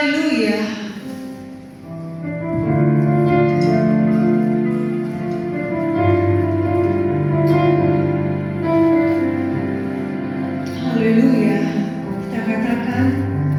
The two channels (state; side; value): identical; both; correlation 1.00